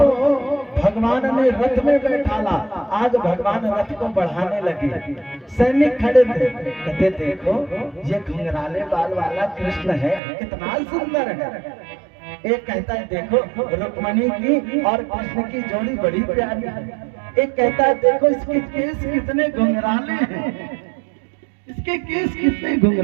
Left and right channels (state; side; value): drops out; left; at 10.2 s